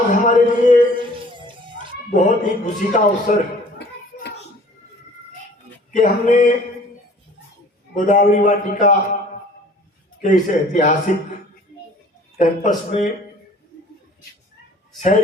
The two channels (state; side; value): normal; both; correlation 0.51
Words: हमारे लिए बहुत ही खुशी का अवसर कि हमने गोदावरी वाटिका के इस ऐतिहासिक कैंपस में